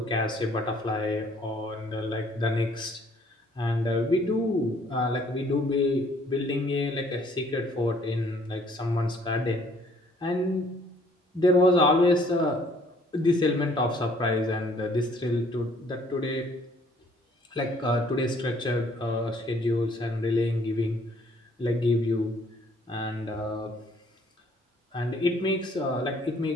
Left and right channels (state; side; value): normal; both; correlation 0.60